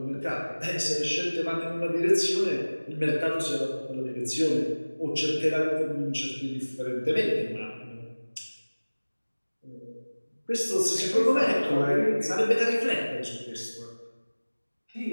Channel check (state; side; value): inverted; both; correlation -1.00